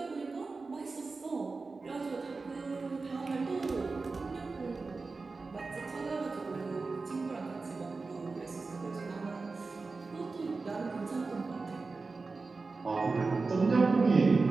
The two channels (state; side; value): quieter; left; 4.0 dB